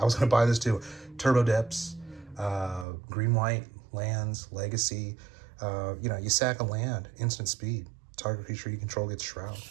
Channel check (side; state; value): left; drops out; at 2.9 s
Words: was going to buy this too. Turbo Depths, green-white lands, legacy. You know, you sack a land, instant speed. Target creature you control gets Shroud.